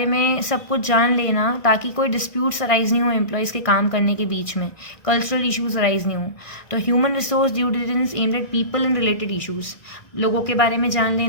में सब कुछ जान लेना ताकि कोई डिस्प्यूट्स अराइज नहीं हो एम्प्लॉयज़ के काम करने के बीच में, कल्चरल इशूज़ अराइज नहीं हो. तो human resource due diligence aimed at people and related issues, लोगों के बारे में जान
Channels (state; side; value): late; right; 1.6 ms